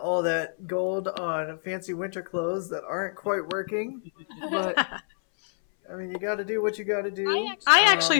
that gold on fancy winter clothes that aren't quite working. But I mean, you got to do what you got to do. I actually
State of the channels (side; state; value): right; silent; 60 dB below the other